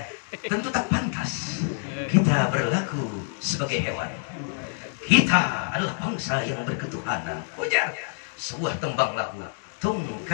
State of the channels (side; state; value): right; silent; 61 dB below the other